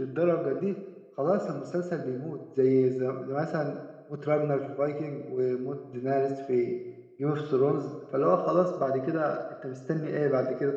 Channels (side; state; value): both; identical; correlation 1.00